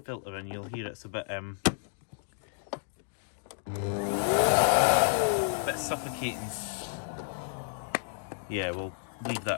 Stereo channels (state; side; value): silent; right; digital silence